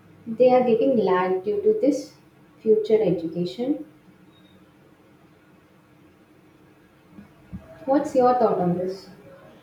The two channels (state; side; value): identical; both; correlation 1.00